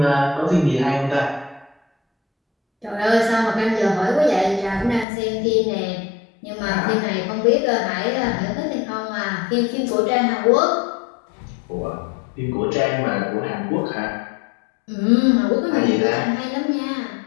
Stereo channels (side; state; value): right; drops out; at 5.1 s